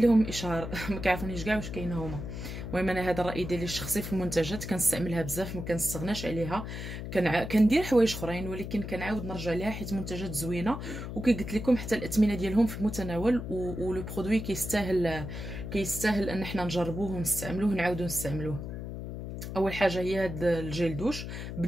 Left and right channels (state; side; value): noise; left; hum, 7 dB below the sound